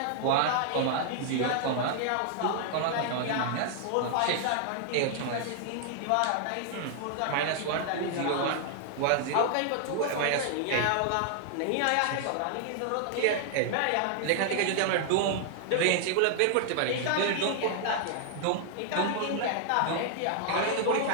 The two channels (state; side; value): different; both; correlation 0.00